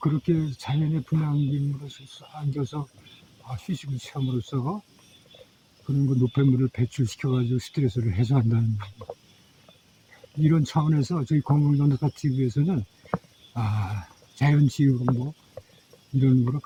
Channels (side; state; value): both; identical; correlation 1.00